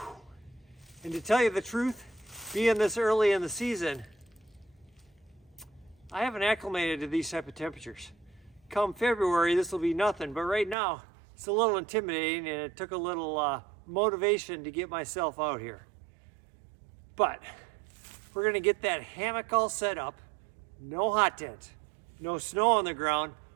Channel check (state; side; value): drops out; left; at 10.8 s